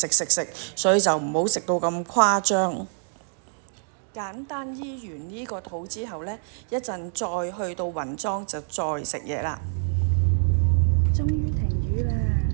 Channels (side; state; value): left; silent; digital silence